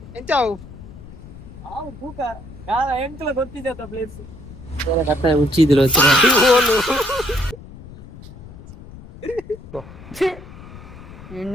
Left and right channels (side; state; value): left; noise; rumble, 17 dB below the sound